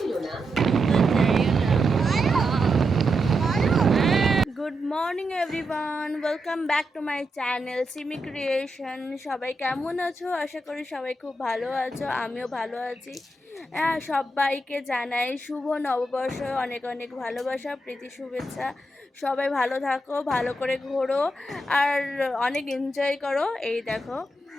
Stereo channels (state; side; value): normal; both; correlation 0.85